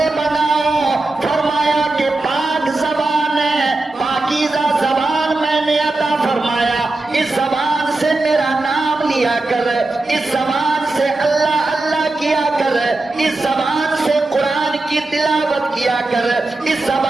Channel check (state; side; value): quieter; left; 3.1 dB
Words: بناؤ؟ فرمایا کہ پاک زبان ہے، پاکیزہ زبان میں نے عطا فرمایا. اس زبان سے میرا نام لیا کر، اس زبان سے اللہ اللہ کیا کر، اس زبان سے قرآن کی تلاوت کیا کر، اس